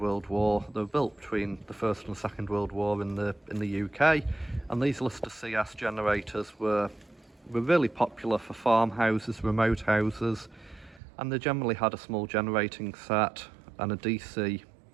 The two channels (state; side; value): drops out; left; at 11.0 s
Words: War. They were built between the First and Second World War in the UK, and these Lister CS generators were really popular for farmhouses, remote houses, and they generally had a small generating set and a DC